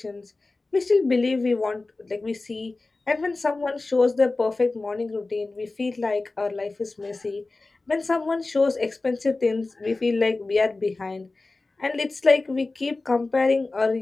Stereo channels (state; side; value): quieter; right; 3.4 dB